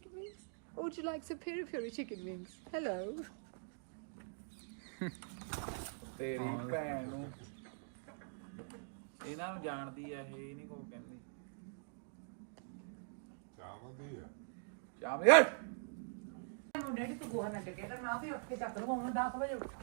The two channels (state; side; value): silent; left; digital silence